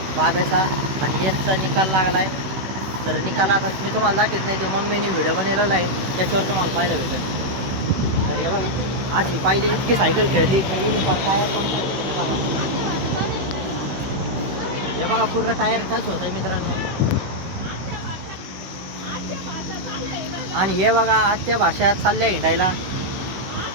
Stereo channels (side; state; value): left; late; 16 ms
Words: बाब्याचा आणि एकचा निकाल लागलाय. तर निकालात मी तुम्हाला दाखवत नाही, तो मम्मीने व्हिडिओ बनवलेला आहे, त्याच्यावर तुम्हाला पाहायला भेटेल. तर हे बघा आज ही पहिली इतकी सायकल खेळली काही टायर पंक्चर केले. हे बघा पूर्ण टायर टच होत आहे मित्रांनो. आणि हे बघा आजच्या भाषेत चालले हिंडायला.